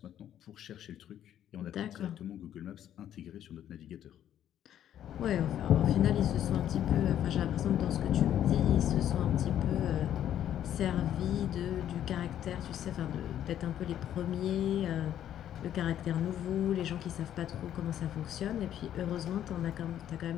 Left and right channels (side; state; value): right; quieter; 10.9 dB